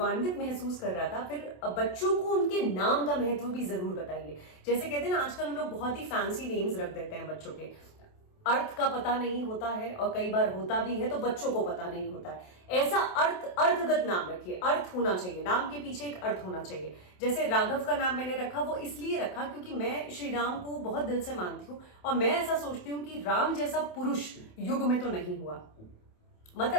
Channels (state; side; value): late; right; 27 ms